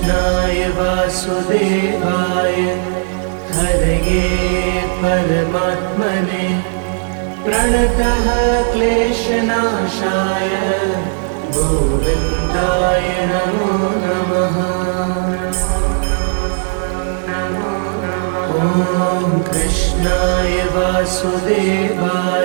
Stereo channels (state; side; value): silent; left; 61 dB below the other